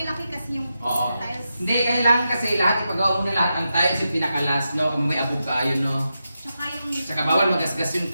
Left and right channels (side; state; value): both; inverted; correlation -0.88